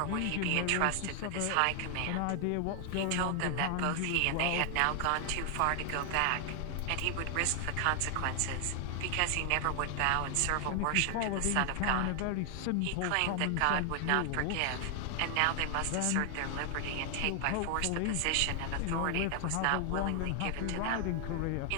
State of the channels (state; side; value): different; both; correlation 0.00